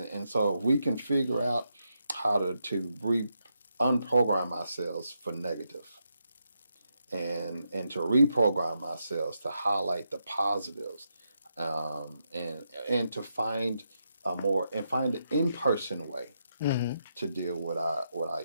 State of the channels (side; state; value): both; inverted; correlation -0.83